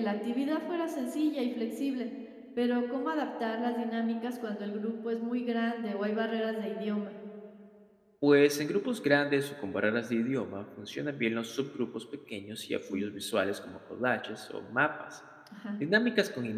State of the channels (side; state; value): both; identical; correlation 1.00